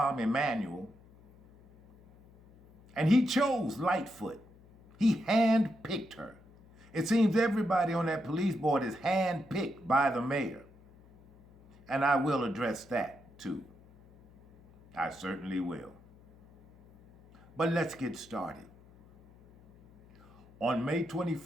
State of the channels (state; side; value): noise; left; hum, 25 dB below the sound